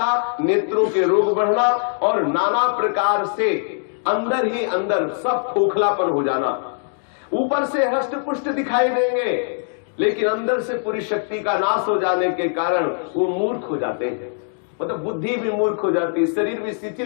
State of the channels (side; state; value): right; silent; digital silence